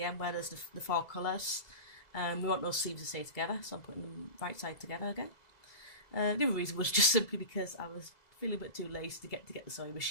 end where there's the four colours. We want those seams to stay together, so I'm putting them right side together again. The other reason was just simply because I was feeling a bit too lazy to get the sewing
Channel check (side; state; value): right; late; 2.0 ms